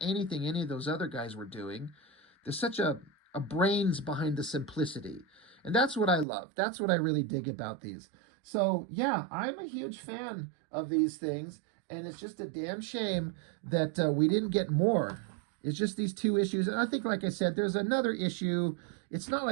anything any of those other guys were doing. There's such a brains behind the simplicity. And that's what I love. That's what I really dig about these. So, yeah, I'm a huge fan of these things. And it's just a damn shame that we didn't get more. It's just these 2 issues. And I think, like I said, there's another issue. It's not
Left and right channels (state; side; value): drops out; left; at 6.2 s